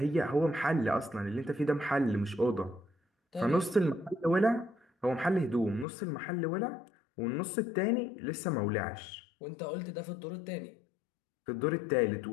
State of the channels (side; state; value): right; drops out; at 5.9 s